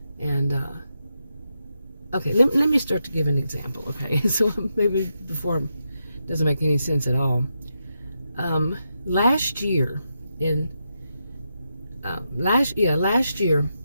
And okay, let me start to give an example. Okay, so maybe before it doesn't make any sense at all. Last year,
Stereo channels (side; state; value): both; inverted; correlation -0.85